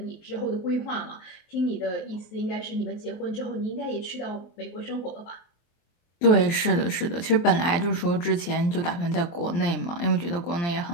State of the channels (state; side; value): late; right; 23 ms